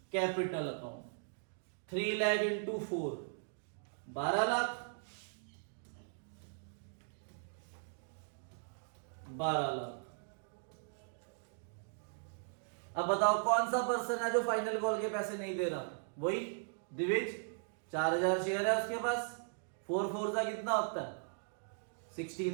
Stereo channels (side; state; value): left; silent; digital silence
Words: capital account. 3 lakh into 4 12 lakh, 12 lakh. अब बताओ कौन सा पर्सन है जो फाइनल कॉल के पैसे नहीं दे रहा? वही दिविज, 4,000 शेयर है उसके पास, 4 4 का कितना होता है?